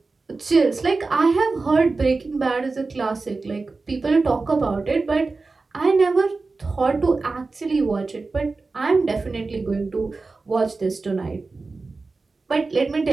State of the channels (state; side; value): quieter; left; 3.8 dB